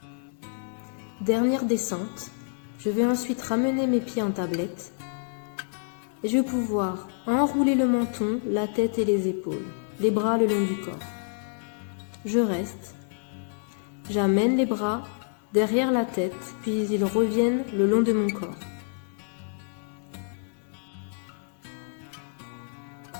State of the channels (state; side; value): silent; right; 59 dB below the other